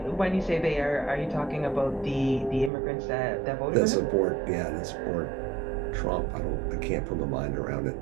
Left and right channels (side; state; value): left; drops out; at 2.7 s